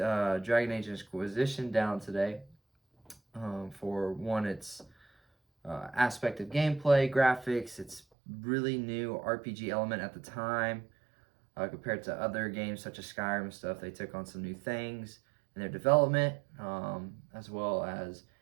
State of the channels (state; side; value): drops out; left; at 8.0 s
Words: Age Inquisition down today. For one, its aspect of gameplay, graphics. It's really new RPG element at the time. Compared to other games such as Skyrim and stuff. They took on some new things in their development, as well as